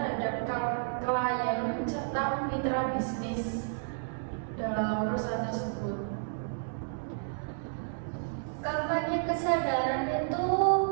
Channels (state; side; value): silent; left; digital silence